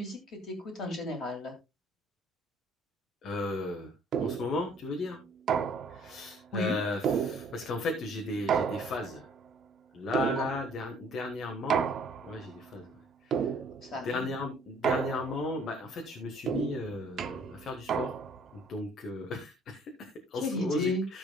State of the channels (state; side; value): normal; both; correlation 0.58